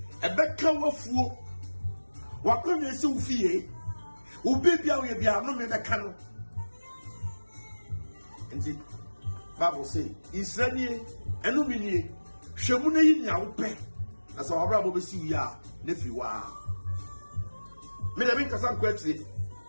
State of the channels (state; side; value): inverted; both; correlation -1.00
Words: A back cower fool. What can you see? Who baby, I will be a no man that can. nti Bible say Israeli enumini hwemu na yi nya wo pe na sa wabra bo besi wi a na fi wa me da bin kasa kwatire